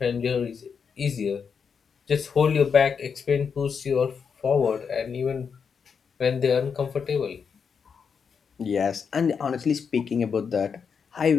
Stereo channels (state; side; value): quieter; right; 6.3 dB